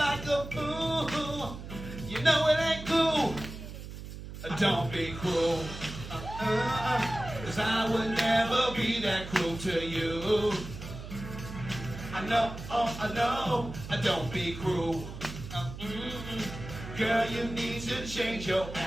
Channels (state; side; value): noise; right; hum, 11 dB below the sound